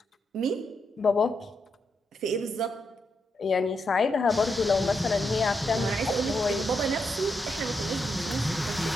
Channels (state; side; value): normal; both; correlation 0.82